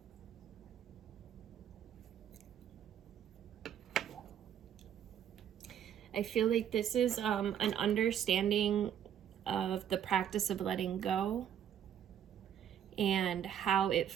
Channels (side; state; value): left; quieter; 9.4 dB